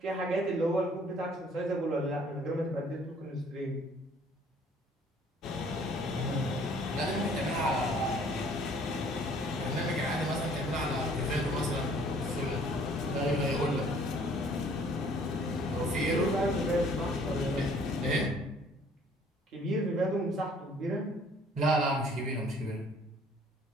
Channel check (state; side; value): normal; both; correlation 0.57